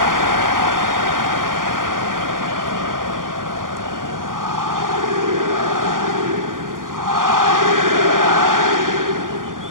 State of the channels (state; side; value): late; left; 0.90 ms